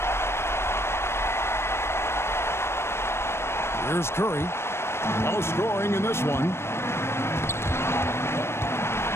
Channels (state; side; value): late; right; 0.12 ms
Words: Here's Curry. No scoring in this one.